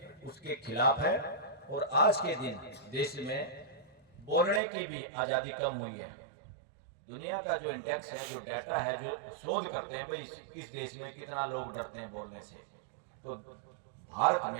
उसके खिलाफ है। और आज के दिन देश में बोलने की भी आजादी कम हुई है। दुनिया का जो इंडेक्स है, जो डाटा है, जो शोध करते हैं भाई इस देश में कितना लोग डरते हैं बोलने से, तो भारत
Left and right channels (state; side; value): drops out; left; at 4.6 s